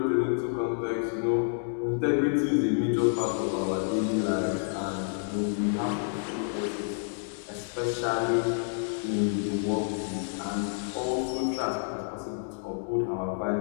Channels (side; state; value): right; silent; digital silence